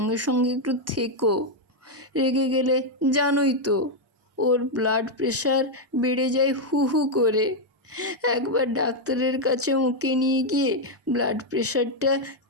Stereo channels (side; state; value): both; normal; correlation 0.01